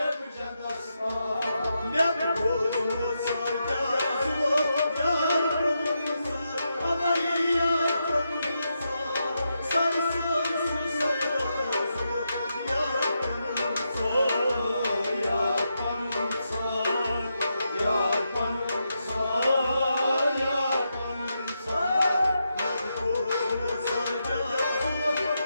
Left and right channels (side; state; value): both; inverted; correlation -0.84